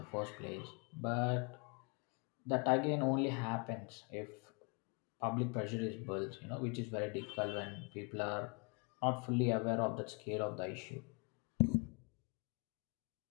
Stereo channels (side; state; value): right; quieter; 34.2 dB